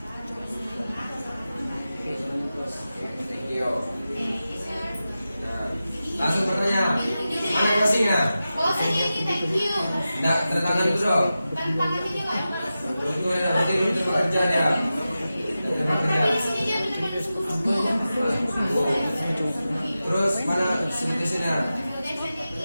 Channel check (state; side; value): inverted; both; correlation -0.93